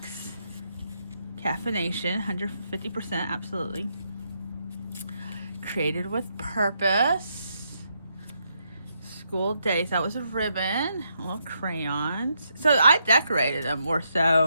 Caffeination, 150%, absolutely. Created with purpose. School days. That was a ribbon. Little crayons. So I decorated them more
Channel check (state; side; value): inverted; both; correlation -0.78